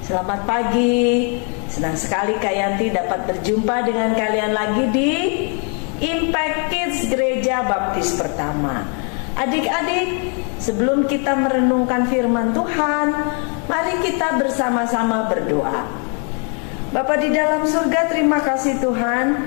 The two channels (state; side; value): quieter; right; 39.6 dB